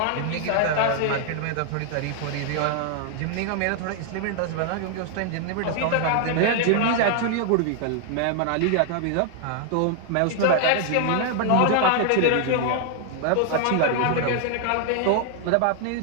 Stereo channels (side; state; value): both; different; correlation 0.00